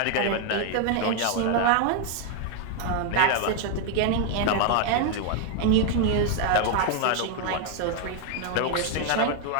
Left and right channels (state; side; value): different; both; correlation 0.00